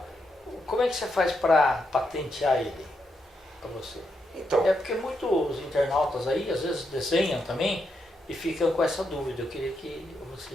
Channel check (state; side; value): normal; both; correlation 0.82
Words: como é que você faz para patentear ele para você? Então, É porque muitos internautas aí às vezes desenham também e ficam com essa dúvida. Eu queria que